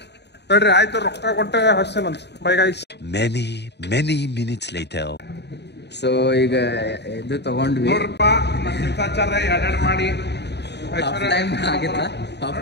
ಹೇಳ್ರಿ ಆಯ್ತು, ರೊಕ್ಕ ಕೊಟ್ಟೆ ಹಸ್ತೇನಂತ. Bye guys. Many minutes later. So ಈಗ ಇದು ತಗೊಂಡ್ವಿ. ನೋಡ್ರಪ್ಪ, ಎರಡೆರಡು ಮಾಡಿ ಹಾಫ್ ಟೈಮ್ ಆಗಿತ್ತ. ಹಾಫ್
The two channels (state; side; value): late; right; 0.50 ms